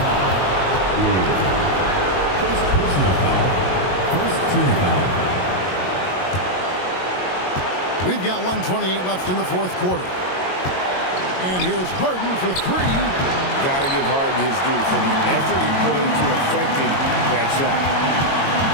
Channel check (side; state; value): right; late; 22 ms